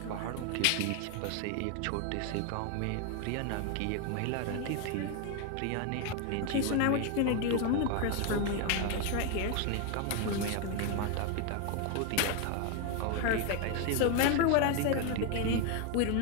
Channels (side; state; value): both; different; correlation 0.01